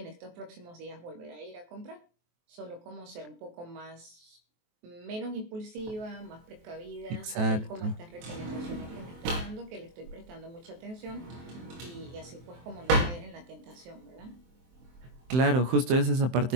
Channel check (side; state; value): left; late; 23 ms